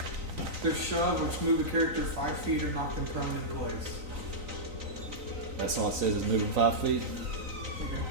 There's shove, which move the character 5 feet or knock them prone in place. That's all it says is moving 5 feet.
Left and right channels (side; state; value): left; late; 3.9 ms